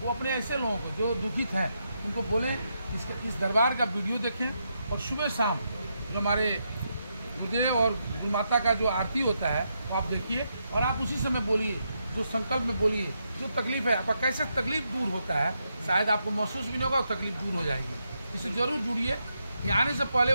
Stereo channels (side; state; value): both; inverted; correlation -0.82